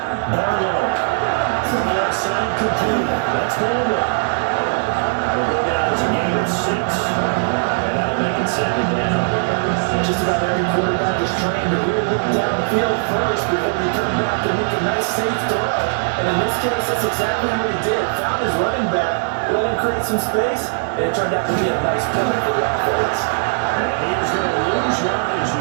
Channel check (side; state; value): left; silent; digital silence